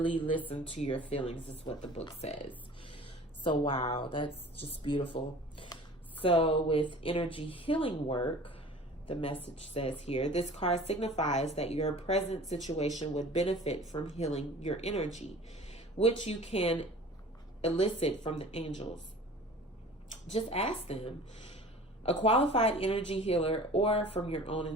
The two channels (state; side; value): normal; both; correlation 0.44